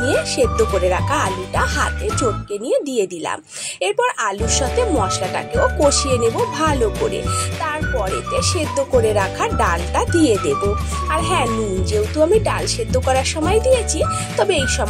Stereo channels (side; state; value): both; identical; correlation 1.00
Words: নিয়ে সেদ্ধ করে রাখা আলুটা হাতে চটকে নিয়ে দিয়ে দিলাম। এরপর আলুর সাথে মশলাটাকেও কষিয়ে নেব ভালো করে। তারপরেতে সেদ্ধ করে রাখা ডালটা দিয়ে দেব। আর হ্যাঁ, নুন যেহেতু আমি ডাল সেদ্ধ করার সময় দিয়েছি, তবে এই